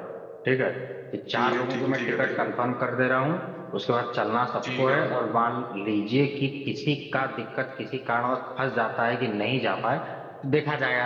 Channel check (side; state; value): both; identical; correlation 1.00